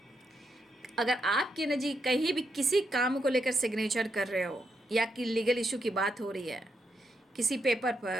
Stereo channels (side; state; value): both; normal; correlation 0.81